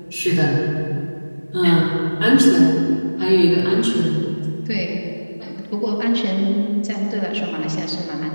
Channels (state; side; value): inverted; both; correlation -1.00